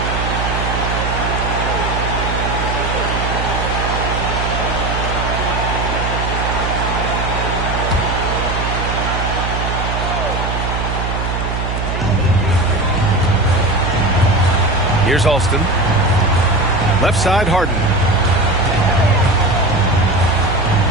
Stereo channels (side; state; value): right; noise; hum, 3 dB below the sound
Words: Here's Alston. Left side, Harden.